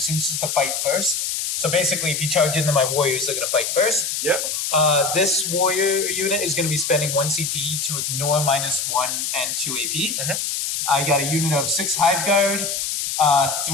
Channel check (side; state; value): left; noise; hiss, 2 dB below the sound